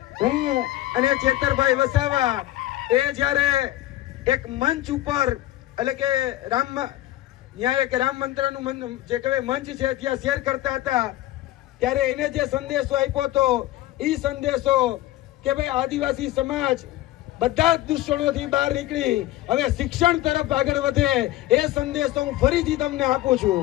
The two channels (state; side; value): quieter; right; 15.6 dB